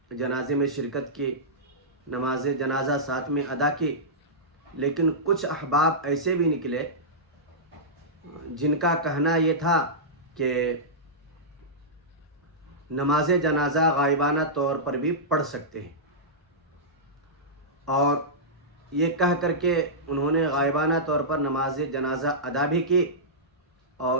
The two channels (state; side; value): normal; both; correlation -0.14